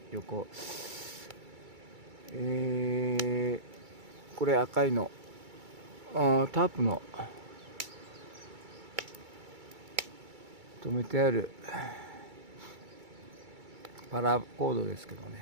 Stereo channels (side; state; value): left; late; 2.3 ms